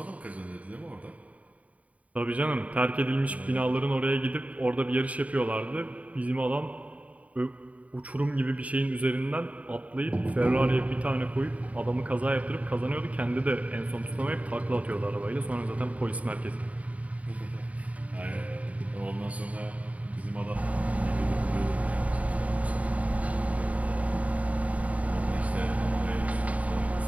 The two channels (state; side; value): late; left; 0.068 ms